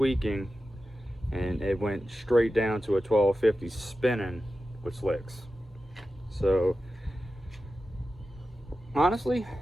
and it went straight down to a 1250 spinning with slicks. So honestly,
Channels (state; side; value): normal; both; correlation 0.92